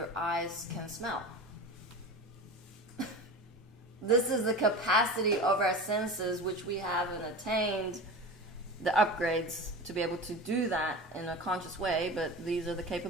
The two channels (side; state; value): both; normal; correlation 0.31